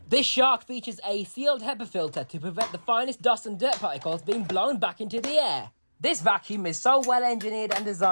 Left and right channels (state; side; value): inverted; both; correlation -1.00